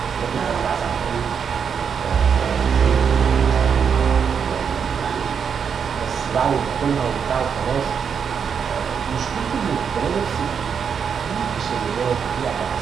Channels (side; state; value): left; quieter; 6.9 dB